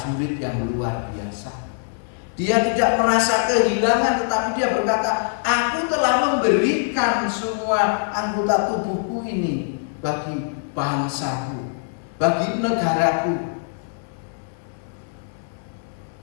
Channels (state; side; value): silent; right; 64 dB below the other